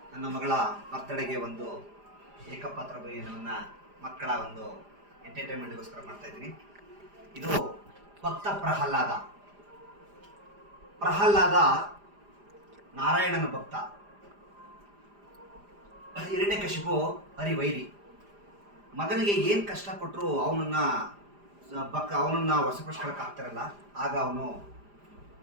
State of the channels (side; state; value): left; late; 4.9 ms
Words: ನನ್ನ ಮಗಳ ಬರ್ತಡೆಗೆ ಒಂದು ಏಕಪಾತ್ರ ಭೋಜನವನ್ನು ಮಕ್ಕಳ ಒಂದು ಎಂಟರ್ಟೈನ್ಮೆಂಟ್ಗೋಸ್ಕರ ಮಾಡ್ತಾ ಇದ್ದೀನಿ. ಇದು ಭಕ್ತ ಪ್ರಹ್ಲಾದ ನಾರಾಯಣನ ಭಕ್ತ. ಹಿರಣ್ಯಕಶಿಪು ಹರಿವೈರಿ. ಮಗನಿಗೆ ಏನು ಕಷ್ಟ ಕೊಟ್ಟರು ಅವನನ್ನ ವಶಪಡಿಸ್ಕೊಳಕ್ಕೆ ಆಗ್ತಾರಲ್ಲ, ಆಗ ಅವನು